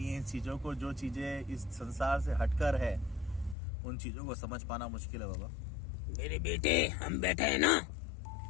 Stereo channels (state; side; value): drops out; right; at 3.6 s